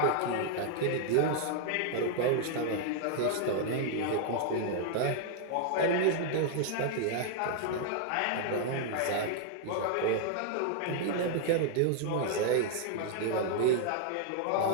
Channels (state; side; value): different; both; correlation 0.00